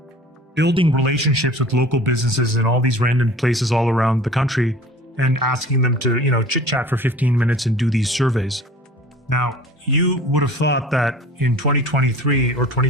building relationships with local businesses in all these random places all around the country, and asking them to, chit chat for 15 minutes and do these surveys. Now, you would have thought that in 2023 or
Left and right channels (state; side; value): normal; both; correlation 0.44